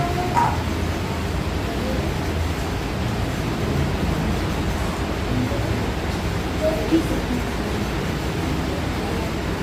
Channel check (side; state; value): both; identical; correlation 1.00